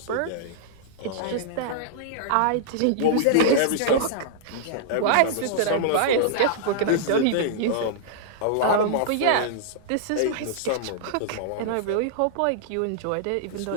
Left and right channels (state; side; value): different; both; correlation -0.02